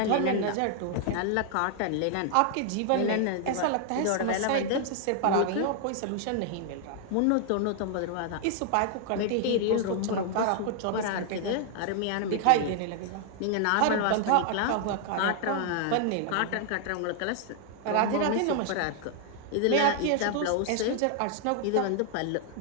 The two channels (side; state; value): both; different; correlation 0.00